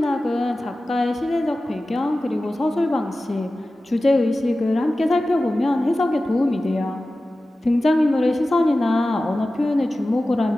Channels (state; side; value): normal; both; correlation 0.95